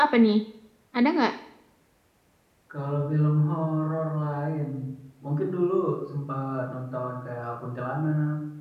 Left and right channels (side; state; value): both; identical; correlation 1.00